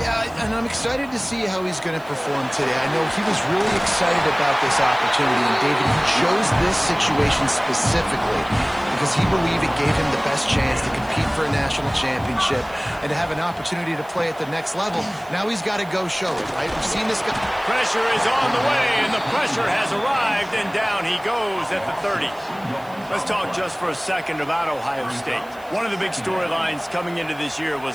Yeah, and I'm excited to see how he's going to perform today. I know he was really excited about this opportunity, and David, he chose this situation specifically because he believed it gave him the best chance to compete for a national championship and to have an opportunity to play at the next level. Now he's got to go show it, right? We've seen this guy. Pressure is on the way, and the pressure has arrived, and down he goes at the 30. Let's talk just for a second about Ohio State. One of the big storylines coming into this year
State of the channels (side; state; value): right; noise; hiss, 26 dB below the sound